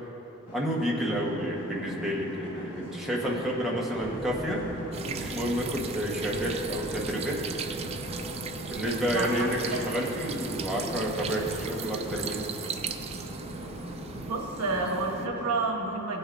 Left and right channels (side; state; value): both; normal; correlation 0.39